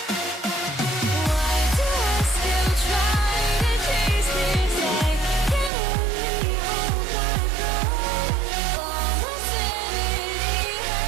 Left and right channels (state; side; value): drops out; left; at 5.7 s